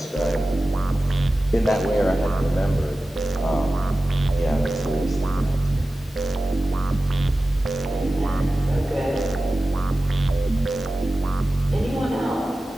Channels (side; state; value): both; normal; correlation 0.95